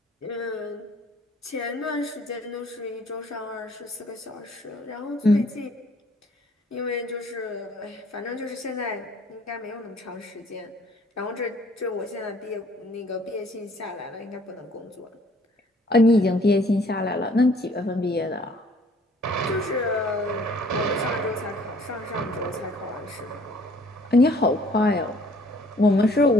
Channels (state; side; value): normal; both; correlation 0.58